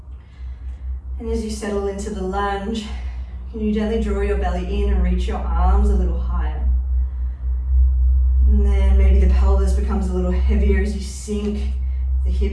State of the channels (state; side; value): identical; both; correlation 1.00